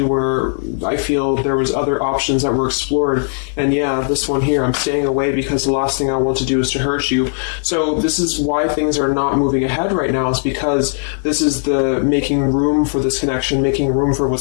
where I feel there was other options that were explored. And yeah, this one here, I'm staying away because the last thing I want to do is to hurt you. So this is why things are not moving ahead right now, is because this is the making room for this connection, making room for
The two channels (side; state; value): right; silent; digital silence